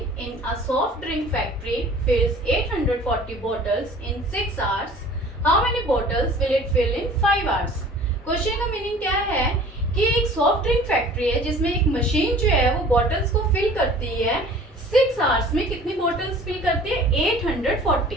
in a soft drink factory fills 840 bottles in 6 hours, how many bottles will it fill in 5 hours. Question का मीनिंग क्या है कि एक सॉफ्ट ड्रिंक फैक्ट्री है जिसमें एक मशीन जो है वो बॉटल्स को फिल करती है, 6 आवर्स में कितनी बॉटल्स फिल करती है,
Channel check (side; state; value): both; normal; correlation 0.47